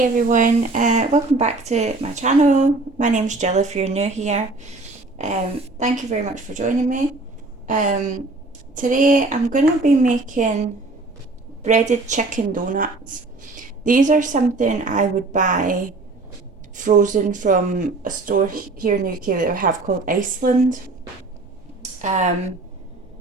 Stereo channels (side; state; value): left; quieter; 3.3 dB